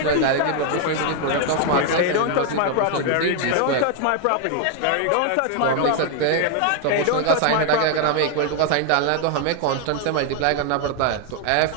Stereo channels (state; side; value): different; both; correlation 0.00